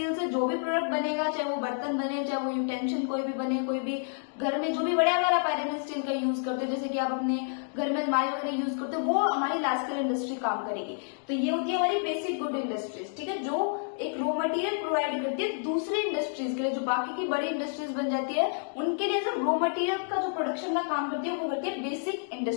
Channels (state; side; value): silent; right; 58 dB below the other